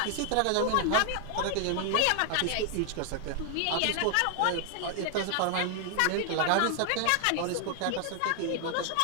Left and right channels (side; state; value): both; different; correlation 0.00